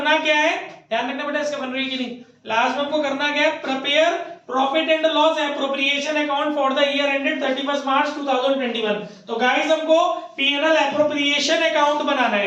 क्या है? ध्यान रखना बेटा, इसका बन रही है कि नहीं। लास्ट में हमको करना क्या है? Prepare profit and loss appropriation account for the year ended 31 मार्च 2021। तो गाइस हमको पीएनएल एप्रोप्रिएशन अकाउंट बनाना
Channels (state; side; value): identical; both; correlation 1.00